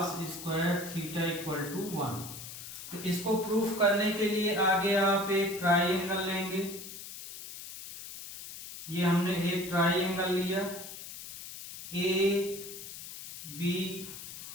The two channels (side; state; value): left; noise; hiss, 11 dB below the sound